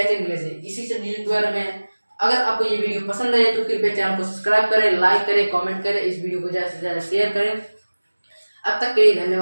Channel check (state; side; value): inverted; both; correlation -1.00